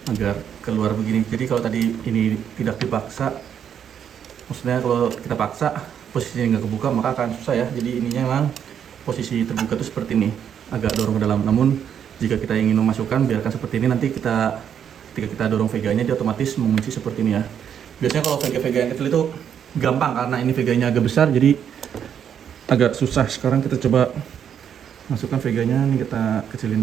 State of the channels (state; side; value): quieter; left; 8.6 dB